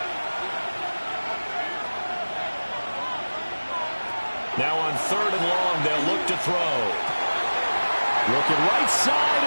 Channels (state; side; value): inverted; both; correlation -1.00